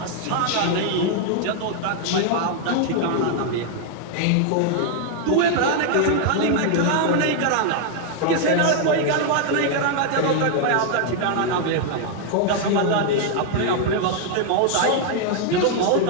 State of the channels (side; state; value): both; different; correlation 0.00